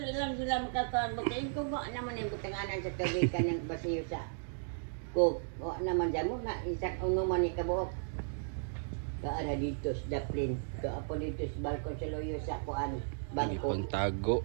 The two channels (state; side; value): silent; left; digital silence